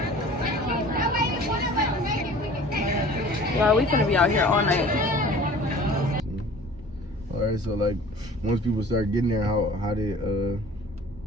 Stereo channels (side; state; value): both; normal; correlation 0.46